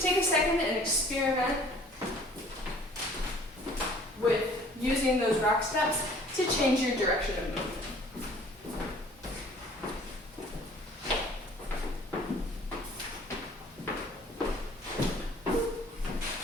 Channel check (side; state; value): both; normal; correlation 0.53